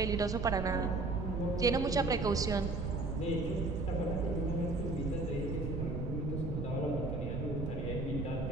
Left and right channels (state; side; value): noise; right; rumble, 3 dB below the sound